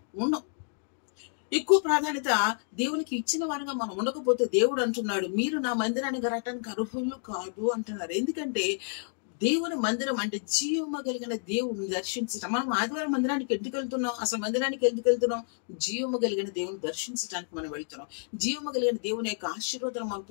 ఉండం. ఎక్కువ ప్రాధాన్యత దేవునికి ఇచ్చిన వారంగా మనం ఉండకపోతే దేవుడు అంటున్నాడు, మీరు నా మందిరానికి రావటానికి అర్హులు కాదు అంటున్నారు. ఎందుకంటే దేవుని మందిరం అంటే జీవము కలిగిన దేవుని దర్శించటం. మనం ఆదివారం మందిరానికి ఎందుకు వెళ్తున్నాం? అసలు మందిరానికి ఎందుకు వెళ్తున్నాం? జీవము కలిగిన దేవుని దర్శించడానికి మనం వెళ్తున్నాం. జీవము కలిగిన దేవుని యొక్క ఆశీర్వాదాలు మనం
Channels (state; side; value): silent; right; digital silence